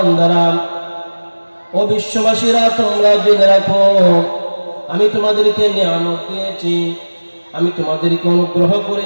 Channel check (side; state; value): both; inverted; correlation -1.00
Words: ও বিশ্ববাসীরা, তোমরা জেনে রাখো আমি তোমাদেরকে নিয়ামত দিয়েছি, আমি তোমাদেরকে অনুগ্রহ